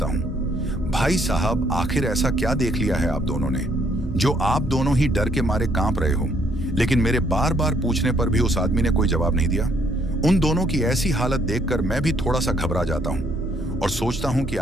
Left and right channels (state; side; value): normal; both; correlation 0.68